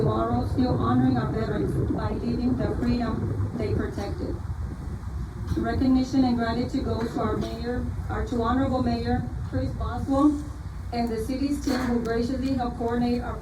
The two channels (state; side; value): identical; both; correlation 1.00